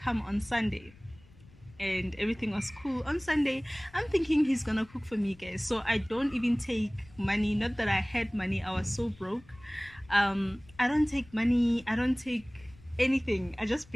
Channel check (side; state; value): left; noise; rumble, 24 dB below the sound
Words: on Sunday. And everything was cool. On Sunday, I'm thinking he's gonna cook for me, guys. So I don't even take money. Not that I had money, I was so broke. I don't take money, I don't take anything. I just